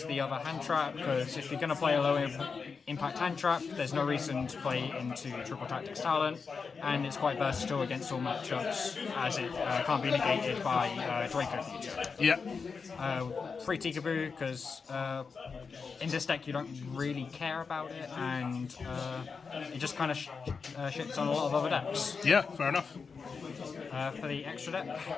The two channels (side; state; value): right; quieter; 5.2 dB